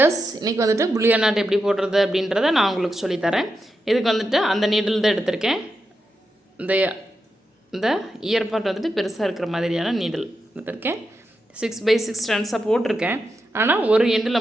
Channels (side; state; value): both; normal; correlation 0.87